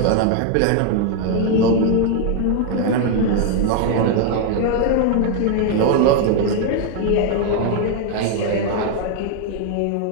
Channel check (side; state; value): both; different; correlation 0.00